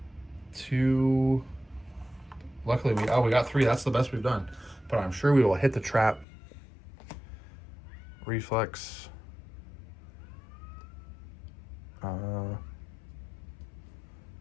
2. Luckily, we got 3. That's the best we've done. But I'm sure we will hit the trap. Reflex. All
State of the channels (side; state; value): right; drops out; at 6.2 s